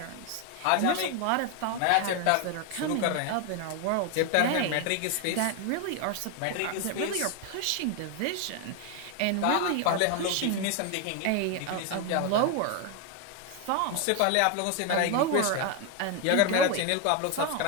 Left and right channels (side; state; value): both; different; correlation 0.01